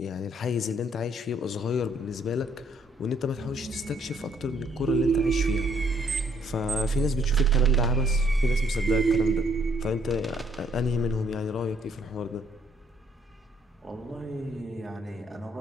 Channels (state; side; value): normal; both; correlation 0.66